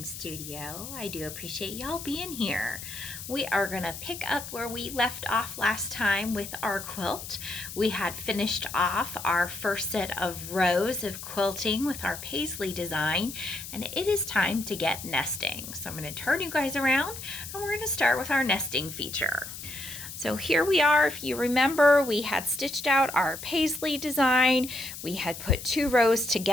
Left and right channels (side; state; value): left; noise; hiss, 10 dB below the sound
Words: studio. I do appreciate y'all being here. We are going to pick up where we left off last time with our quilt. We had finished off our first set of rows of quilting with our paisley design, and it is time to get nesting. So I'm going to turn you guys around, and we're going to start with our nesting feature. So here we are. If you remember, we had stitched out our paisley design. We had put 2 rows